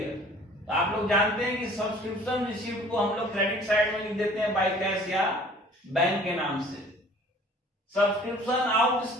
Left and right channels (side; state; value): both; normal; correlation 0.51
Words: तो आप लोग जानते हैं कि सब्सक्रिप्शन रिसीव्ड को हम लोग क्रेडिट साइड में लिख देते हैं बाय कैश या बैंक के नाम से। सब्सक्रिप्शन